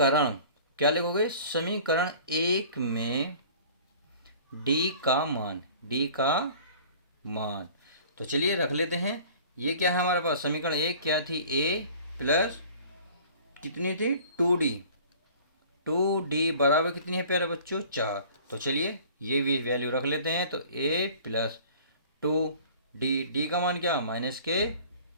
क्या लिखोगे समीकरण 1 में डी का मान, डी का मान। तो चलिए रख लेते हैं। ये क्या है हमारे पास समीकरण 1 क्या थी a प्लस कितनी थी 2d, 2d बराबर कितनी है प्यारे बच्चों 4। तो चलिए ये भी वैल्यू रख लेते हैं। तो a प्लस 2d, डी का मान क्या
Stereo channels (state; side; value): inverted; both; correlation -0.47